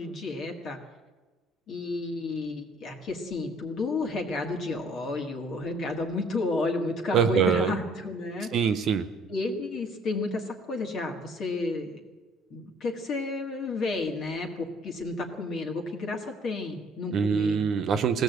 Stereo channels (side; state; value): both; normal; correlation 0.58